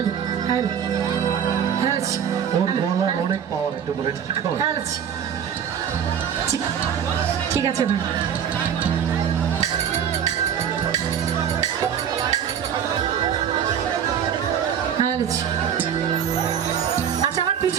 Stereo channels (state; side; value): quieter; left; 8.4 dB